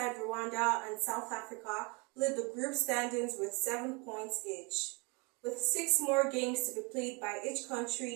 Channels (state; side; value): quieter; left; 30.3 dB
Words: Rwanda and South Africa lead the group standings with 7 points each. With 6 more games to be played by each